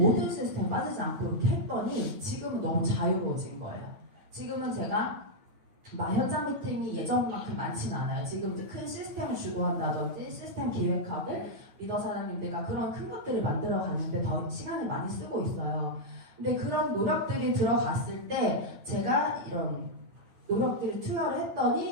시스템 빠지지 않고 이렇게 했더니 지금은 너무 자유로워진 거예요. 지금은 제가 현장 미팅이 예전만큼 많지는 않아요. 지금 이제 큰 시스템을 주도한다든지 시스템 기획학을 리더 사장님들과 그런 큰 것들을 만들어 가는데 더 시간을 많이 쓰고 있어요. 근데 그런 노력들이 들어갔을 때 제가 이런 노력들을 투여를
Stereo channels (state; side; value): late; left; 9.1 ms